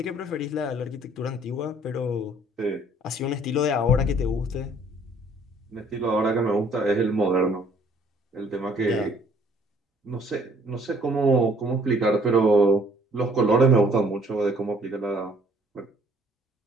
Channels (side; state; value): both; normal; correlation 0.59